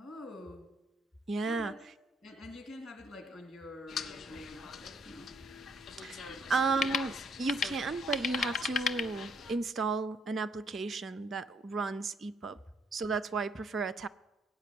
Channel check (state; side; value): normal; both; correlation 0.69